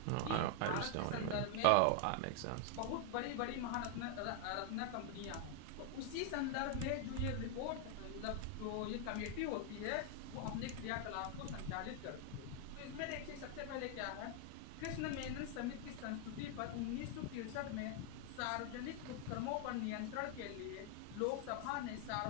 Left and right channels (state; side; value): different; both; correlation 0.00